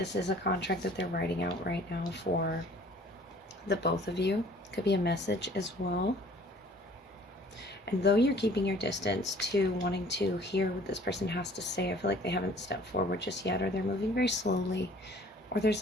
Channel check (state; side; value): normal; both; correlation 0.53